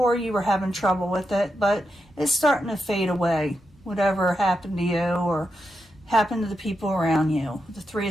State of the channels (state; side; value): normal; both; correlation 0.86